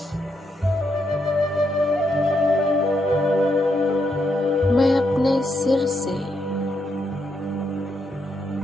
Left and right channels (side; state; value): both; normal; correlation 0.79